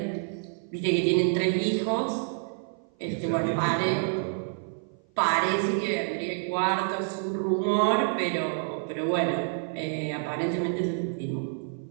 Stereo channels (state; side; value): silent; left; 55 dB below the other